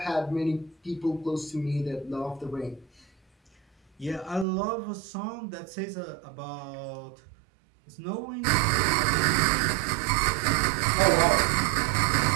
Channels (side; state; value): left; drops out; at 4.5 s